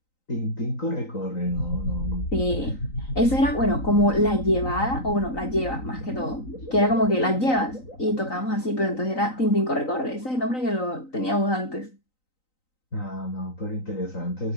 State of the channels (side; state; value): right; late; 3.9 ms